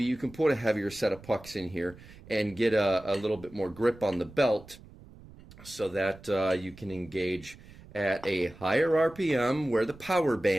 you can put a heavier set of pucks in here and get a little bit more grip on the belt so that you can engage at a higher RPM where the power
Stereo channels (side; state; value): right; noise; rumble, 20 dB below the sound